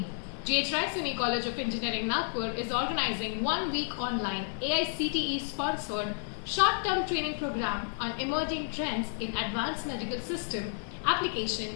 GHRCE College of Engineering, Nagpur is organizing 1-week online AICTE-sponsored short-term training program on emerging trends in advanced medical system,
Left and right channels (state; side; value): silent; right; 57 dB below the other